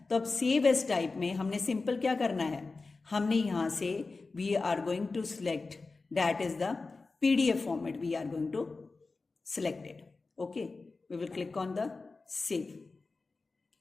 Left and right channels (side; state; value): right; quieter; 3.9 dB